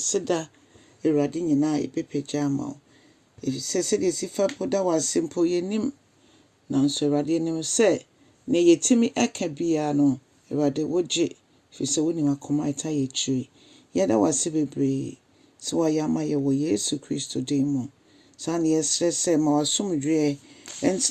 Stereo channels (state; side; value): identical; both; correlation 1.00